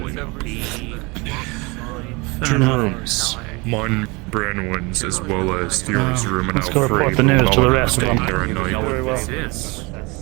now. Two rooms. Mine brand ones, as well as Theo's room, and Let's go report the news to the rest of them. Very well.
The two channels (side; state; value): left; quieter; 26.5 dB